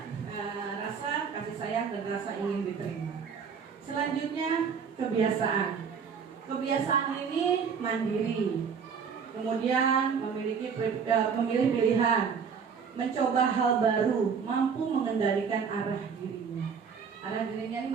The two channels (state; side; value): quieter; left; 6.3 dB